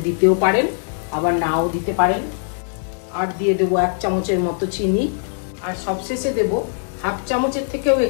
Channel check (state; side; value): silent; right; 64 dB below the other